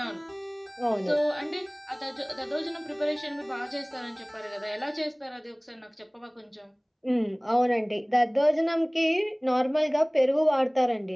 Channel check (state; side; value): identical; both; correlation 1.00